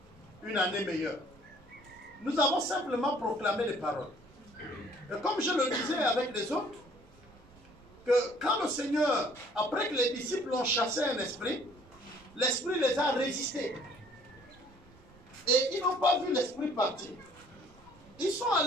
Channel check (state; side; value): noise; right; rumble, 25 dB below the sound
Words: une année meilleure. Nous avons simplement proclamé les paroles. Et comme je le disais avec les autres, que quand le Seigneur, après que les disciples ont chassé un esprit, l'esprit les a résistés. Et ils n'ont pas vu l'esprit partir. Ils sont